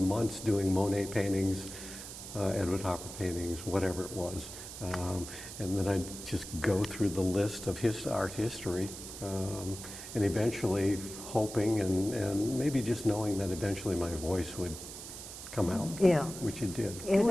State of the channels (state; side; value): noise; right; hiss, 11 dB below the sound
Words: months doing Monet paintings, Edward Hopper paintings, whatever it was. And then I'd just go through the list of his art history, and eventually hoping and maybe just knowing that eventually my voice would come out, Yeah. which it did. Yeah, Did